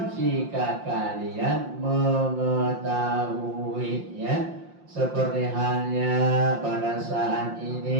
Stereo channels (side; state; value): left; late; 5.7 ms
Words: jika kalian mengetahui, ya. Seperti halnya pada saat